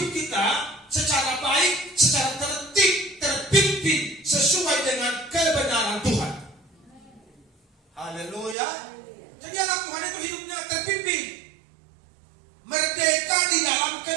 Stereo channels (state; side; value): drops out; left; at 8.6 s